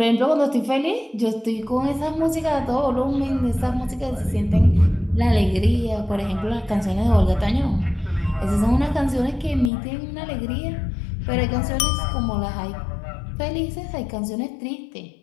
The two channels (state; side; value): drops out; right; at 9.7 s